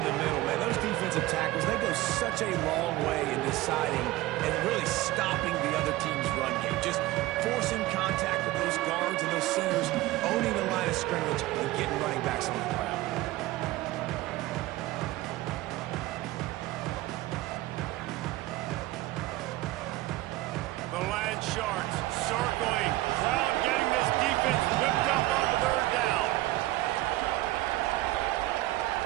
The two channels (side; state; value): left; quieter; 17.6 dB